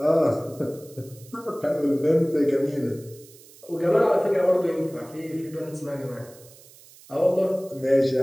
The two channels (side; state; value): right; noise; hiss, 23 dB below the sound